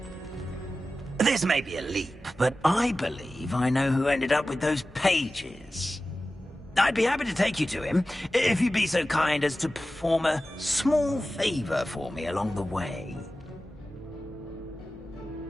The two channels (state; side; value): normal; both; correlation 0.94